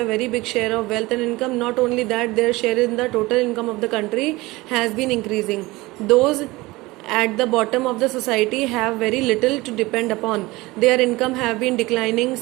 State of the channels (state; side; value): quieter; left; 21.0 dB